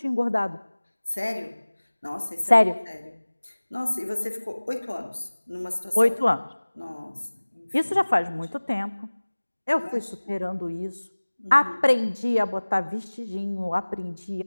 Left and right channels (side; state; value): both; inverted; correlation -1.00